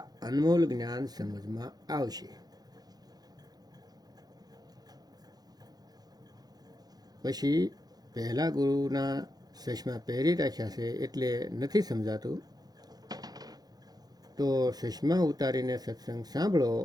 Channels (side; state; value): left; late; 0.19 ms